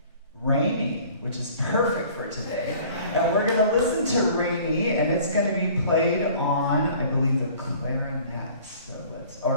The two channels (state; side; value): inverted; both; correlation -0.50